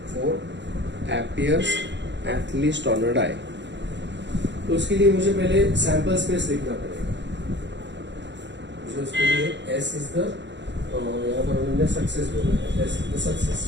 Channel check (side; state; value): left; late; 0.52 ms